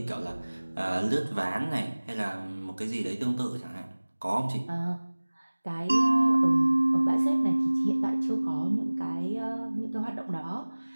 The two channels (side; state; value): both; inverted; correlation -1.00